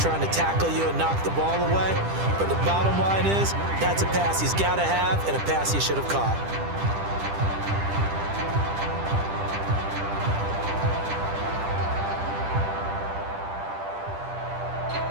to tackle you and knock the ball away. But the bottom line is, that's a pass he's got to have and a pass he should have caught.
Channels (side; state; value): left; late; 10 ms